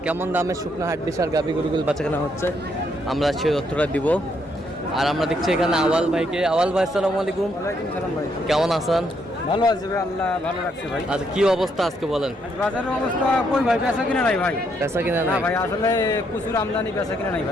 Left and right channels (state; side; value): normal; both; correlation 0.74